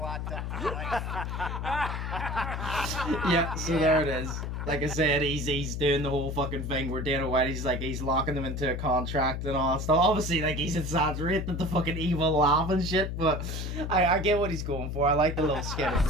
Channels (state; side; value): noise; left; hum, 4 dB below the sound